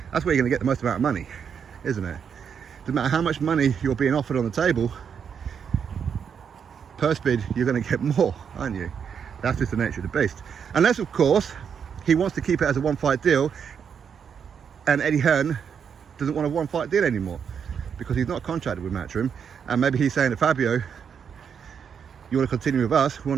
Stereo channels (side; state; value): left; quieter; 7.2 dB